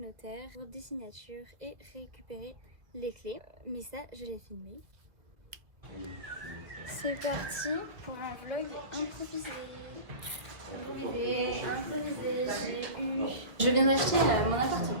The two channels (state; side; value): late; left; 1.8 ms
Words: pour des signatures et récupérer les clés. Mais ça, je l'ai filmé. C'est parti pour un vlog improvisé. Je viens d'acheter mon appartement.